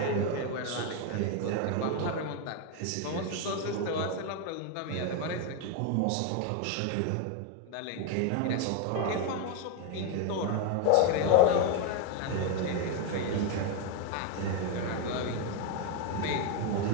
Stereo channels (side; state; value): both; different; correlation 0.01